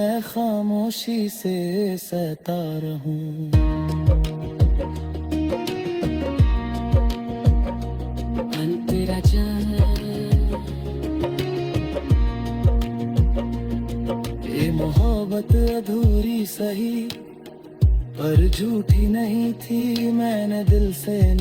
खामोशी से सहता रहूँ। तेरा जान ये मोहब्बत अधूरी सही, पर झूठी नहीं थी। मैंने दिल से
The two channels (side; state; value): both; identical; correlation 1.00